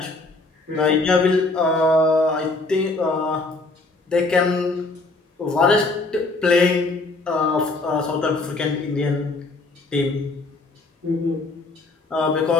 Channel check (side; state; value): right; quieter; 3.2 dB